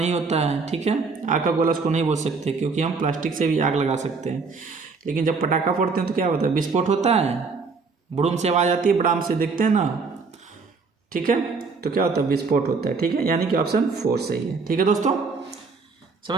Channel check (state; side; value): quieter; left; 4.6 dB